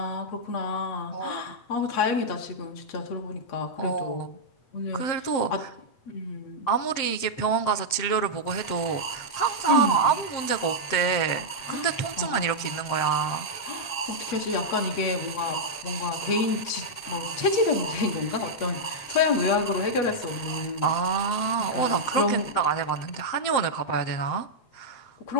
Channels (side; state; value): right; late; 7.7 ms